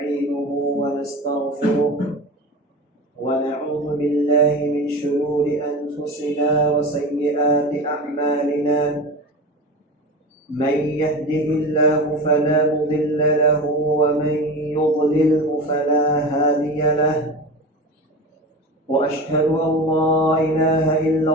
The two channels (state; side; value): normal; both; correlation 0.29